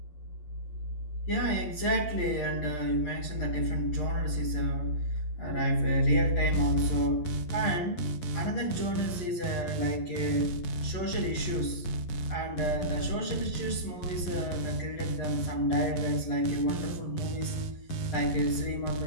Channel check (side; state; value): right; late; 11 ms